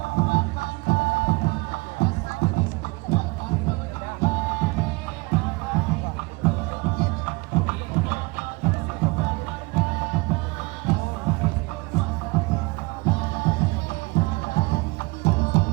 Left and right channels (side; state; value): left; quieter; 25.0 dB